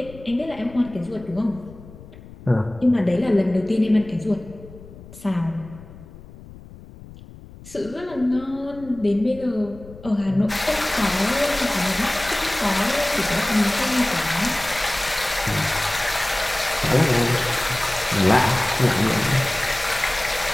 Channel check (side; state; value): left; noise; rumble, 18 dB below the sound